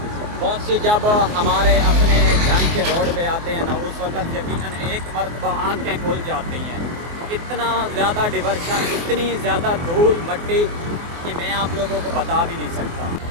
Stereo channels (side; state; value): left; late; 24 ms